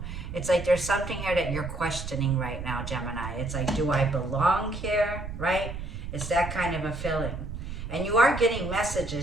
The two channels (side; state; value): right; noise; rumble, 8 dB below the sound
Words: It's like there's something here that you're questioning right now, Gemini. It's like, do I belong here, right? It's that kind of a feeling. And you are getting